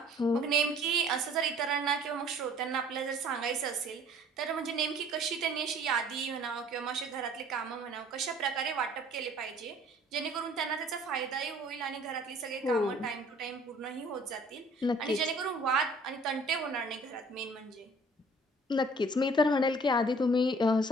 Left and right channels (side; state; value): both; normal; correlation 0.53